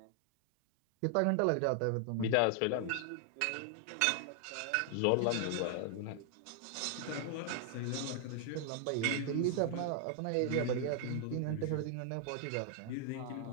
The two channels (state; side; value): different; both; correlation 0.00